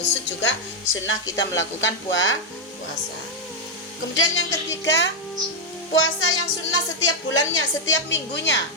juga sunnah kita melakukan puasa. Kemudian yang ketiga, puasa yang sunnah setiap bulannya, setiap minggunya,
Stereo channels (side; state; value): both; normal; correlation 0.01